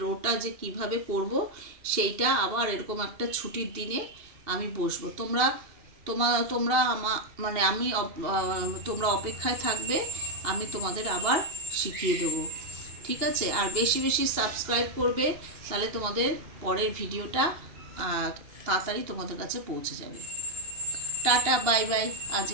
রোটা যে কিভাবে করব সেইটা আবার এরকম একটা ছুটির দিনে আমি বসবো। তোমরা তোমরা মানে তোমরা অপেক্ষায় থাকবে, আমি তোমাদের আবার শিখিয়ে দেবো। ঠিক আছে? আর বেশি বেশি সাবস্ক্রাইব করবে, তাহলে তোমাদের পরের ভিডিওটা তাড়াতাড়ি তোমাদের কাছে পৌঁছে যাবে। টাটা বাই বাই, আজ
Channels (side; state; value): left; late; 2.8 ms